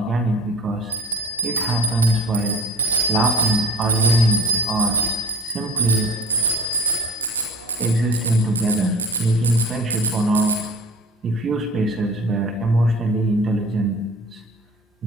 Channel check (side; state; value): both; normal; correlation 0.42